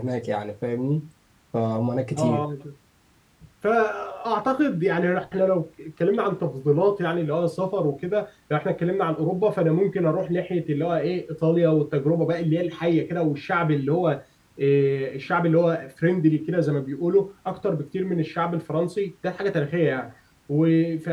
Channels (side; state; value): both; identical; correlation 1.00